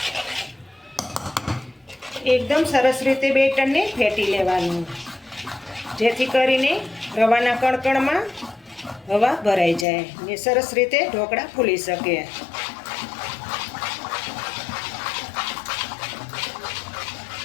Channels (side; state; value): right; drops out; at 9.9 s